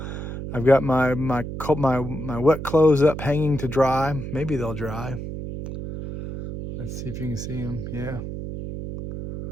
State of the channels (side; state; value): right; noise; hum, 7 dB below the sound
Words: I've got my wet clothes up, hanging to dry. Maybe they'll dry. Let's see if you can see them. Yeah.